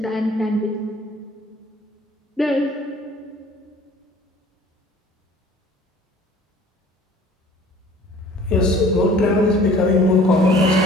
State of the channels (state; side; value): normal; both; correlation 0.50